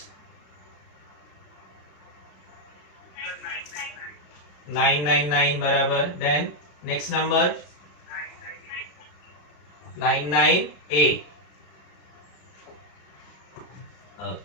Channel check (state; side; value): late; right; 34 ms